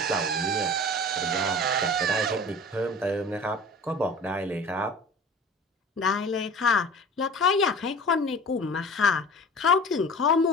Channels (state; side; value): normal; both; correlation 0.40